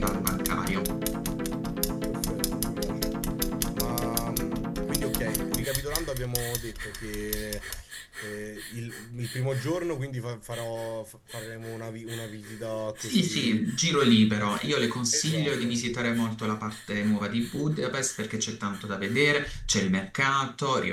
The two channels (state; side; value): identical; both; correlation 1.00